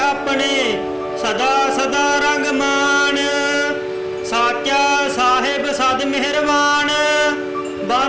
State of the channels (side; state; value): both; identical; correlation 1.00